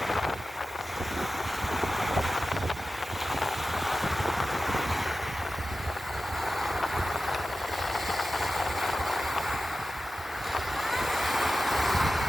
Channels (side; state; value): both; normal; correlation 0.94